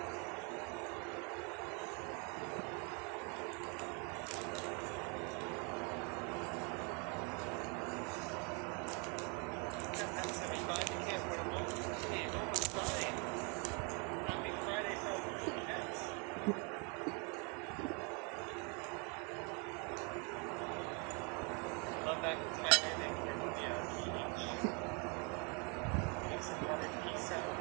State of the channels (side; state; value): left; quieter; 34.3 dB